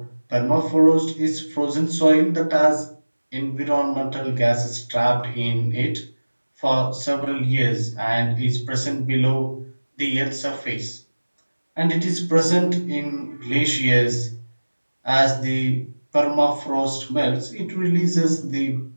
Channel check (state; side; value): inverted; both; correlation -1.00